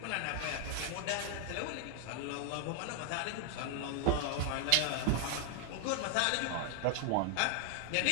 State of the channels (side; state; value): both; different; correlation -0.01